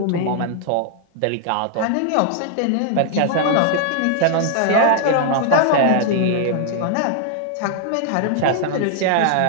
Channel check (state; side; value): different; both; correlation 0.00